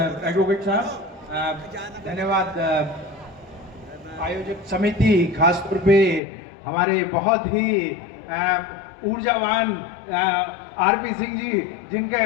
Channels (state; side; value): drops out; right; at 6.2 s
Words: एडवोकेट साहब, धन्यवाद आयोजक समिति, खासतौर पे हमारे बहुत ही ऊर्जावान आरपी सिंह जी,